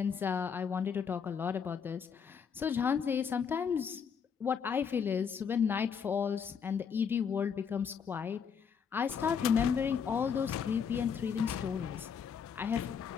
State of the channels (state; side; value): quieter; right; 6.8 dB